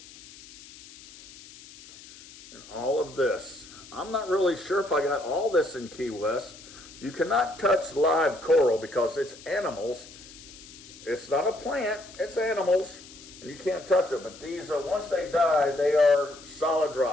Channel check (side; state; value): left; noise; hiss, 19 dB below the sound